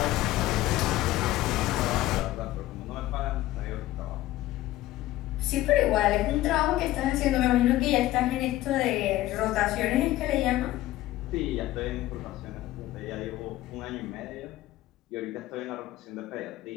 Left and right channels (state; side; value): quieter; right; 15.8 dB